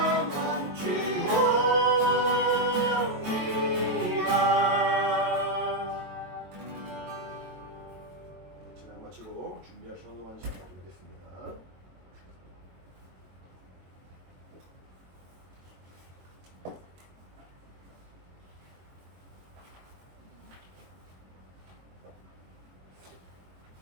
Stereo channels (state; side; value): late; left; 22 ms